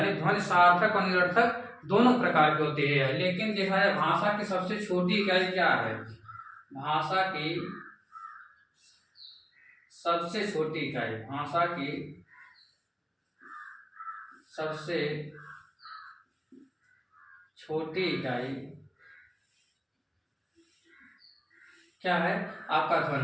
ध्वनि सार्थक और निरर्थक दोनों प्रकार की होती है। लेकिन देखा जाए भाषा की सबसे छोटी इकाई क्या है, भाषा की सबसे छोटी इकाई, भाषा की सबसे छोटी इकाई क्या है, आपका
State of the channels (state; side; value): identical; both; correlation 1.00